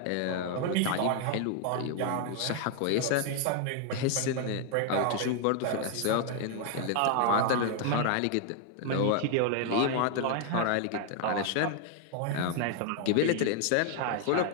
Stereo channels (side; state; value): both; different; correlation 0.00